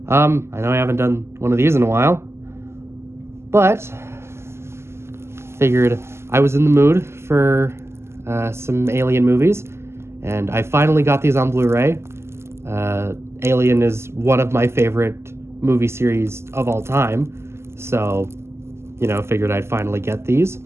I know I haven't done one of these in a while, but figured I was in the mood for some Alien movies, and I finally got these on Blu-ray. Alien is one of my favorite movie series of all time, so figured I'd finally get these.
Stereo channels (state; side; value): late; left; 0.13 ms